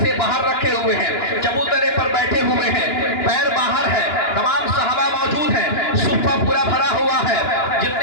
سے باہر رکھے ہوئے ہیں, چبوترے پر بیٹھے ہوئے ہیں, پیر باہر ہے, تمام صحابہ موجود ہیں, صفہ پورا بھرا ہوا ہے.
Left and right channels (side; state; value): right; late; 2.9 ms